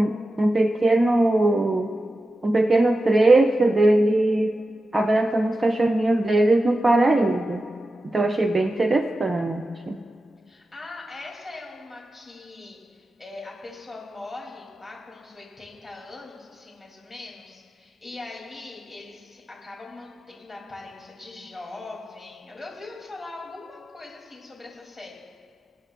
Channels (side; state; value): both; normal; correlation 0.92